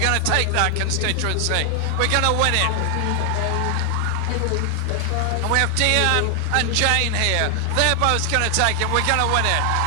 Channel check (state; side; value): different; both; correlation 0.00